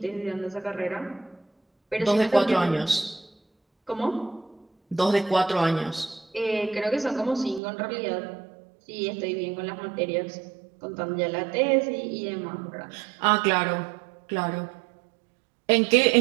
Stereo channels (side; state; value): left; drops out; at 7.6 s